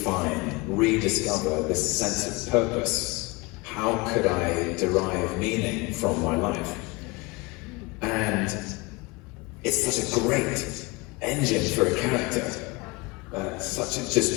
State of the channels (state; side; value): quieter; right; 25.0 dB